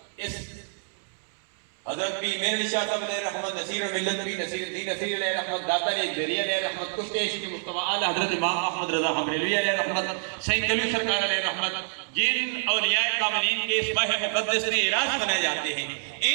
اس حضرت پیر میر علی شاہ صاحب علیہ رحمت، نصیر ملت پیر نصیر الدین نصیر علیہ رحمت، داتا علیہ جری علیہ رحمت، کشت عشق مصطفیٰ اعلی حضرت امام احمد رضا حبریلوی علیہ رحمت، سید کلو سرکار علیہ رحمت، جن اولیاء کاملین کے اس ماہ مقدس میں اعراض منائے جاتے ہیں،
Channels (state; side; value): silent; left; digital silence